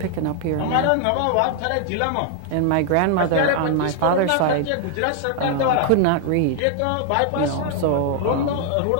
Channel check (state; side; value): different; both; correlation 0.00